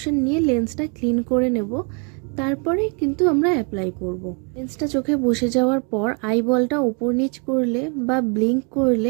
নিয়ে লেন্সটা ক্লিন করে নেব, তারপরে কিন্তু আমরা অ্যাপ্লাই করব। লেন্সটা চোখে বসে যাওয়ার পর আইবলটা উপর নিচ করলে বা ব্লিঙ্ক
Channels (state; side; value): quieter; left; 35.9 dB